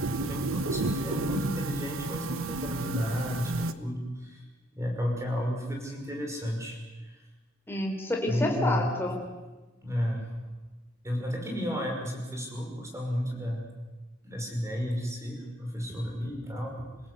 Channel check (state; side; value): normal; both; correlation 0.71